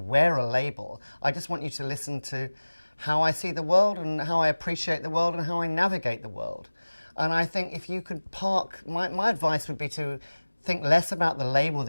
a label. I just want you to listen to how I see the world and how I appreciate the world and how I navigate the world. And I think if you could park, my advice would be to think less about the label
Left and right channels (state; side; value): inverted; both; correlation -1.00